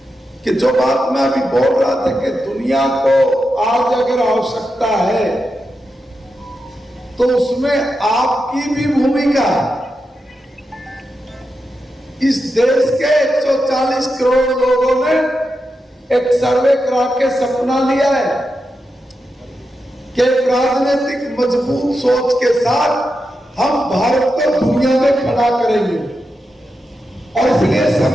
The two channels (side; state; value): both; normal; correlation 0.88